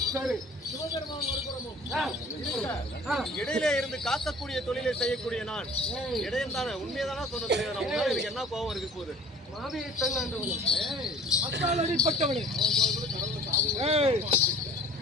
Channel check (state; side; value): normal; both; correlation 0.47